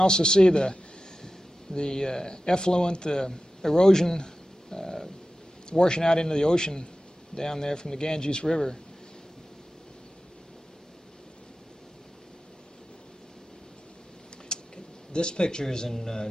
see the effluent, the erosion washing out into the ocean down there from the Ganges River. This picture is in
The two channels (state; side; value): normal; both; correlation 0.94